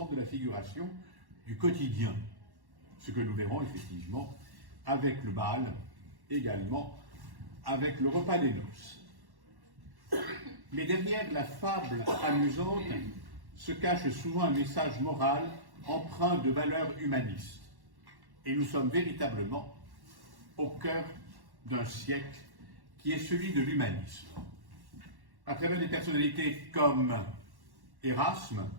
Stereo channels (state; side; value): late; left; 1.1 ms